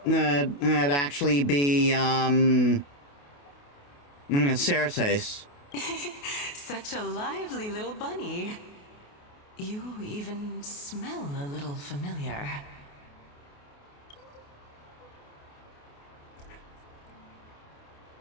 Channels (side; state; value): right; late; 28 ms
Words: actually be Cersei. Such a lively little bunny. You even smell a little familiar.